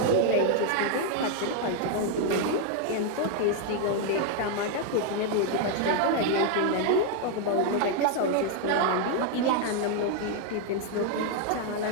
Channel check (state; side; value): different; both; correlation 0.00